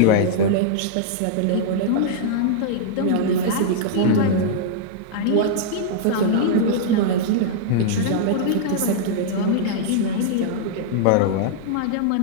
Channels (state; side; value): different; both; correlation -0.02